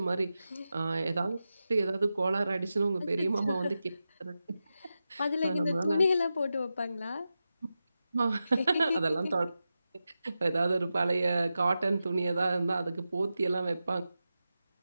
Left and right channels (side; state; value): both; inverted; correlation -0.91